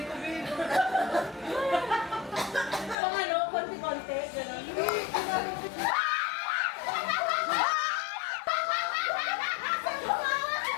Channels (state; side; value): drops out; right; at 3.0 s